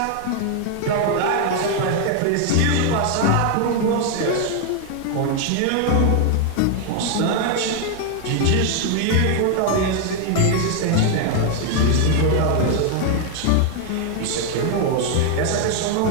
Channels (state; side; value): different; both; correlation 0.00